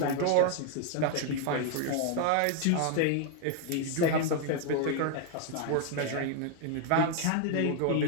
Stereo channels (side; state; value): both; different; correlation 0.00